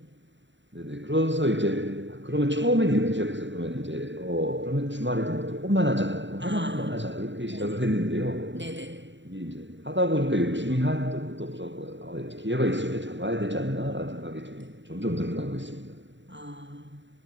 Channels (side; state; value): left; late; 0.54 ms